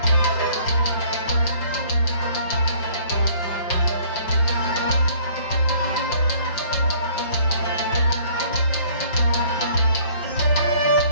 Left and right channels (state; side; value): late; right; 5.7 ms